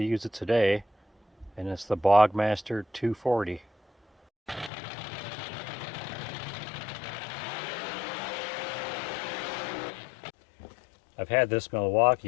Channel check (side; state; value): right; drops out; at 4.7 s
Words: use it today, and it's the Bogmaster 240. I've had this